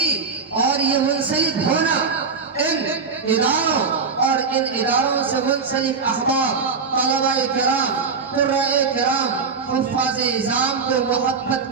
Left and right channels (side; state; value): left; quieter; 5.1 dB